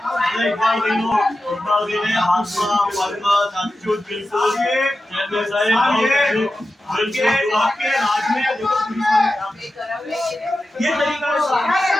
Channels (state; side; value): normal; both; correlation 0.92